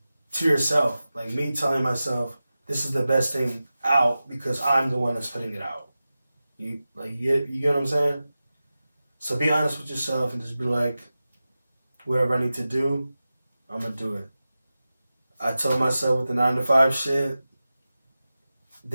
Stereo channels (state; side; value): inverted; both; correlation -0.95